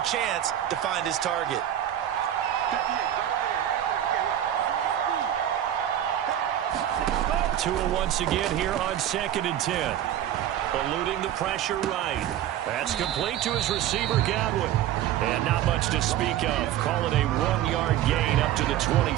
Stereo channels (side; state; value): left; quieter; 11.6 dB